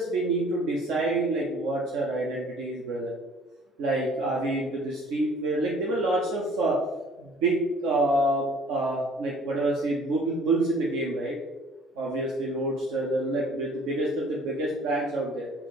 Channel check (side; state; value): both; normal; correlation 0.53